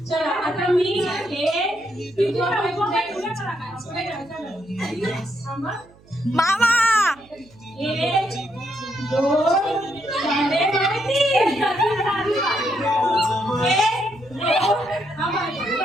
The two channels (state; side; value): noise; right; hum, 27 dB below the sound